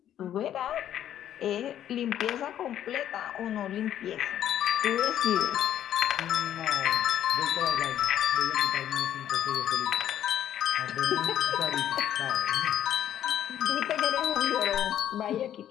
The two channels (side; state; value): right; quieter; 11.0 dB